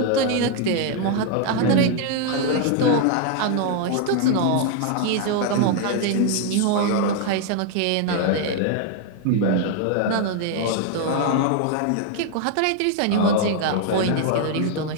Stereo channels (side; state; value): both; different; correlation 0.01